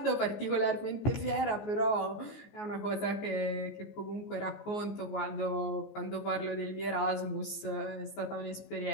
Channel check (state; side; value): late; right; 14 ms